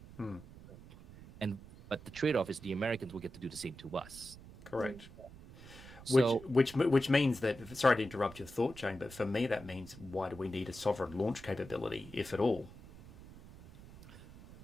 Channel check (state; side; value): noise; right; rumble, 18 dB below the sound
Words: But the trade-off is the Americans will get to do the same to us. Correct. So, Which means that, sorry to interrupt your thought chain, but for me that means, why do we need a sovereign launch capability, if at all?